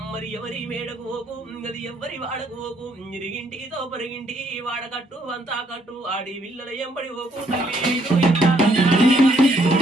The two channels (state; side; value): normal; both; correlation 0.69